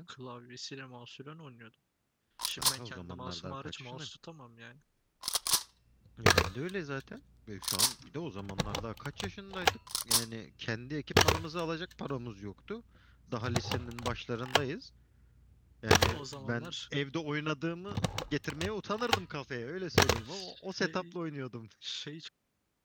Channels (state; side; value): identical; both; correlation 1.00